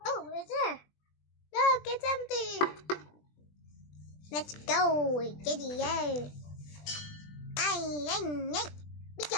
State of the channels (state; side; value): late; right; 20 ms